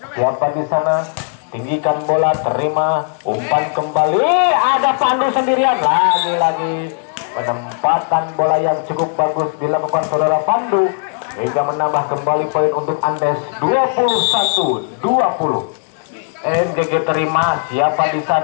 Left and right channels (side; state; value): right; silent; 68 dB below the other